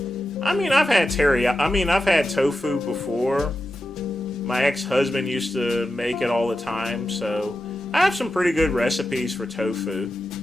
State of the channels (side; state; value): both; normal; correlation 0.91